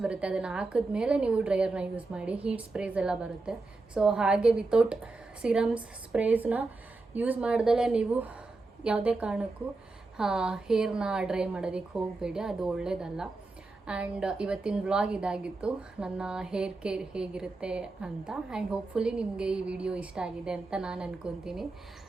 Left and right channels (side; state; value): left; quieter; 3.5 dB